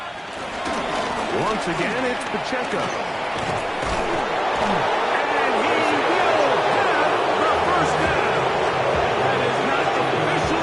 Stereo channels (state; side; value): identical; both; correlation 1.00